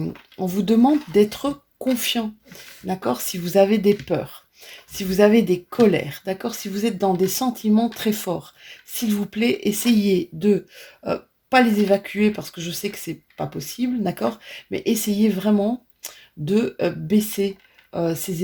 vous demande d'être confiant, d'accord? Si vous avez des peurs, si vous avez des colères, d'accord? Si vous êtes dans des sentiments très forts, s'il vous plaît, essayez de pas les évacuer parce que je sais que c'est pas possible, d'accord? Mais essayez vraiment de baisser ces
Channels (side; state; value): both; identical; correlation 1.00